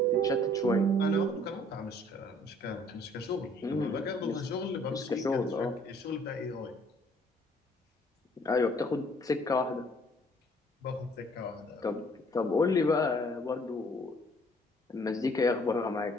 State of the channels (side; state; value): both; normal; correlation 0.59